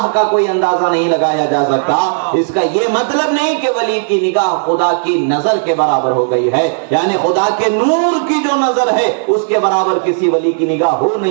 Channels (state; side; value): silent; left; digital silence